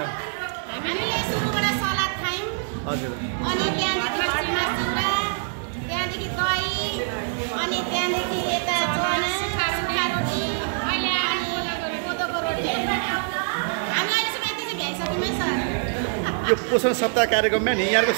हजुर। यो पोषण सप्ताह कार्यक्रममा नि यहाँको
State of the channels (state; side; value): silent; left; digital silence